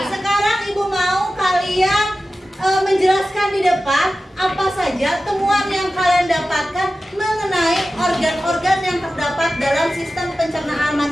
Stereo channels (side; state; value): both; normal; correlation 0.94